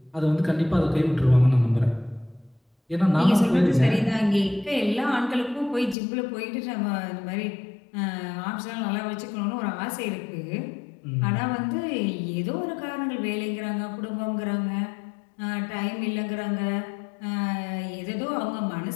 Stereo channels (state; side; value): drops out; right; at 6.0 s